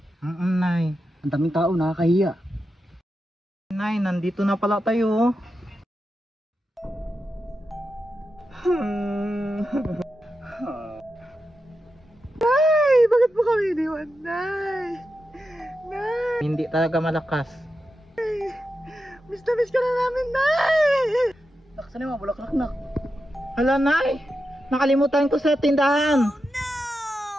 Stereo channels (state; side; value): normal; both; correlation 0.89